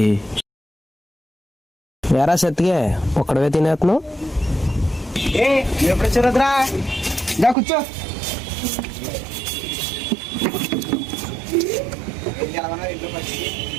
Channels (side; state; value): left; drops out; at 7.6 s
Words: వేరా సత్తిగే ఒక్కడవే తినేస్తున్నావు. ఎప్పుడు రుద్రా దా కూర్చో.